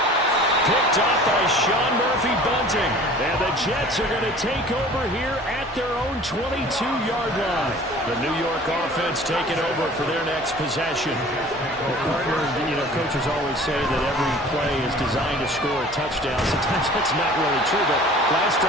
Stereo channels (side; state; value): both; normal; correlation 0.46